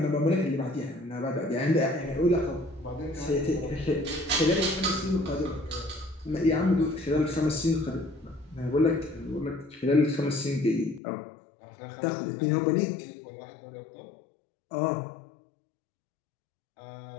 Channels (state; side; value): drops out; right; at 11.0 s